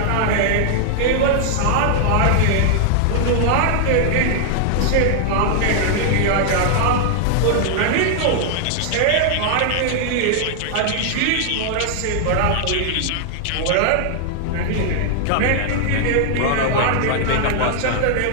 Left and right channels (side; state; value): both; different; correlation -0.01